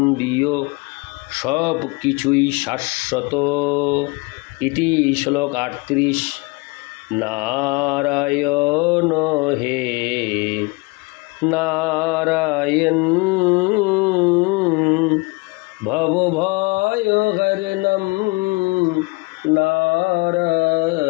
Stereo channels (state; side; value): quieter; right; 26.8 dB